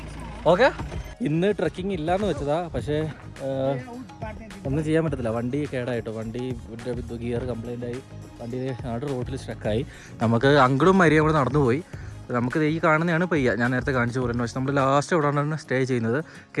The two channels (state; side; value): identical; both; correlation 1.00